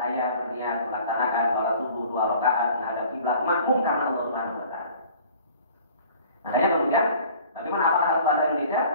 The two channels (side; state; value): both; inverted; correlation -0.49